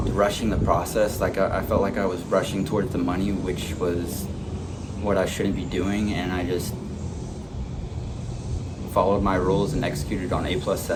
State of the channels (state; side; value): identical; both; correlation 1.00